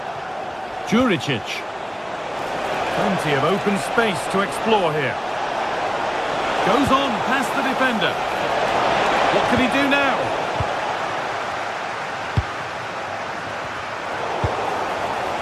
Juricic. Plenty of open space to explore here. Goes on past the defender. What can he do now?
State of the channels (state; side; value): identical; both; correlation 1.00